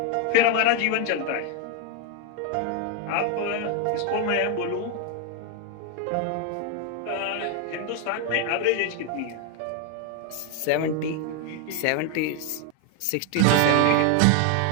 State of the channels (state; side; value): different; both; correlation 0.01